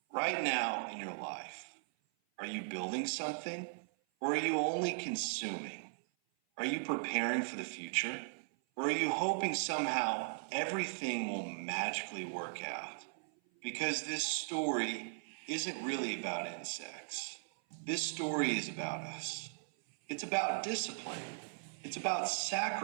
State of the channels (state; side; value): silent; left; 52 dB below the other